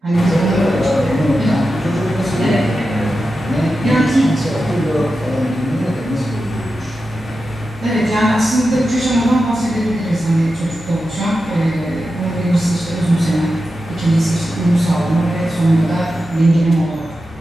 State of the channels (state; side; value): normal; both; correlation 0.91